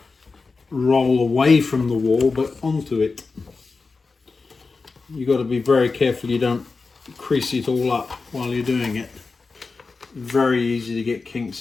roll away from the wall but onto it. You've got to be very careful you don't crease it all up while you're doing it. Very easy to get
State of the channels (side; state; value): right; quieter; 4.2 dB